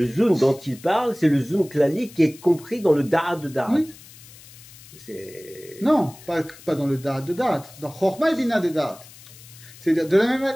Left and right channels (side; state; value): left; noise; hiss, 20 dB below the sound